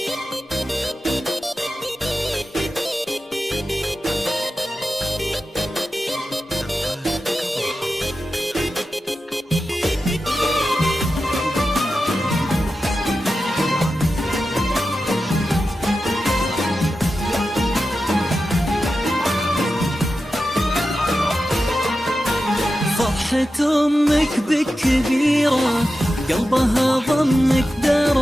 فرحة أمك بك كبيرة قلبها ضمك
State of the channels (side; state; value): both; normal; correlation 0.92